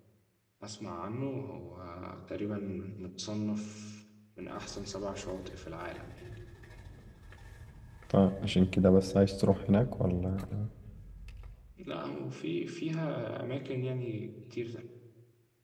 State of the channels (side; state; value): both; identical; correlation 1.00